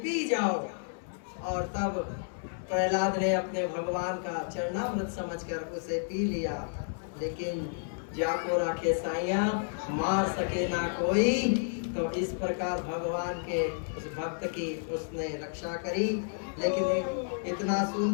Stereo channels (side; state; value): right; silent; 57 dB below the other